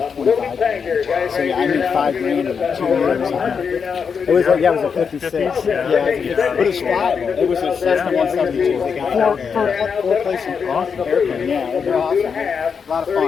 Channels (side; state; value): right; quieter; 6.2 dB